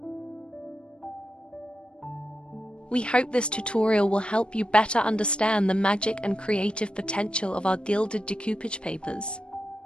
We hope this tutorial will help you better understand the magic and creative potential of our gilded decoupage papers.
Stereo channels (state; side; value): late; right; 0.056 ms